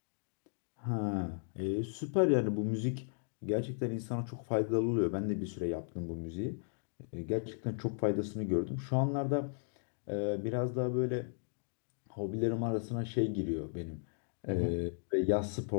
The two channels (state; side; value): silent; right; digital silence